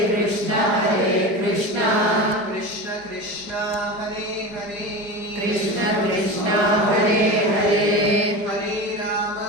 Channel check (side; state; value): left; late; 4.9 ms